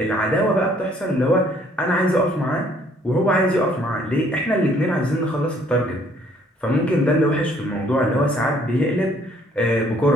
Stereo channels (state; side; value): normal; both; correlation 0.62